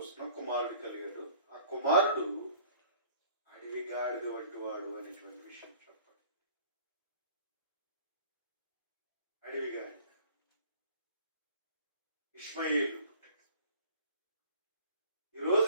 కుమారుడు కలిగాడు. ఆ కుమారుడు అడవి గాడిద వంటి వాడు అనేటువంటి విషయం చెప్పండి. అడవి గాడిద ఇష్మాయేలు పుట్టాడు.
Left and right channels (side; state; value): both; inverted; correlation -0.51